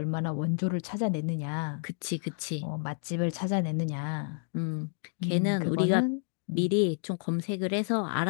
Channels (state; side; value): silent; right; digital silence